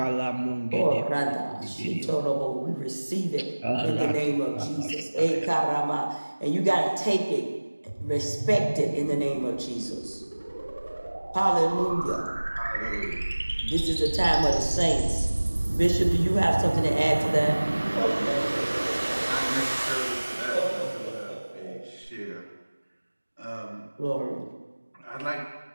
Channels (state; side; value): inverted; both; correlation -1.00